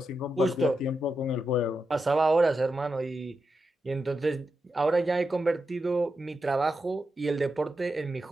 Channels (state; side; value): normal; both; correlation 0.87